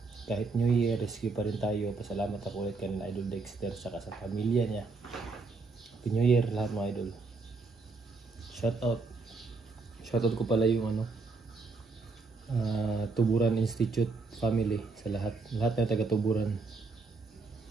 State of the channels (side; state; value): left; quieter; 4.0 dB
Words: Kahit New Year, rescue pa rin tayo. Pasalamat ako ulit kay Idol Dexter saka sa pamilya niya. Happy New Year lahat mga idol. Shoutout ko pala yung Tuburan Institute family sa lahat na taga Tuburan.